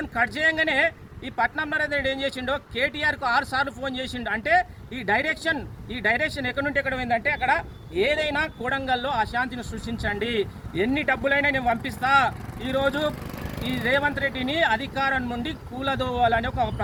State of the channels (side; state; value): both; identical; correlation 1.00